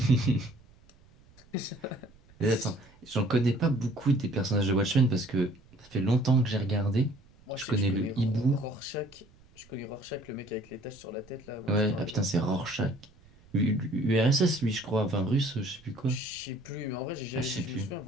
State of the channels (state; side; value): noise; right; rumble, 27 dB below the sound